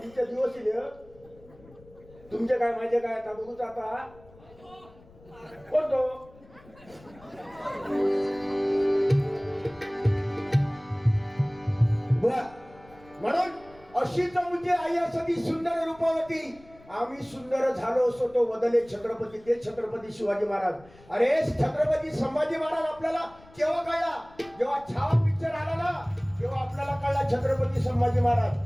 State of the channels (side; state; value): left; noise; rumble, 25 dB below the sound